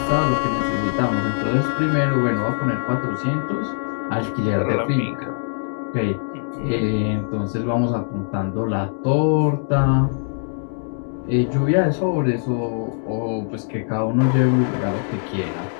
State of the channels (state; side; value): silent; right; digital silence